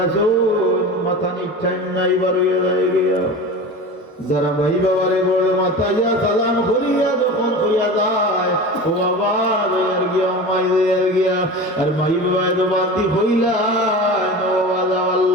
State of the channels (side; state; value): both; normal; correlation 0.32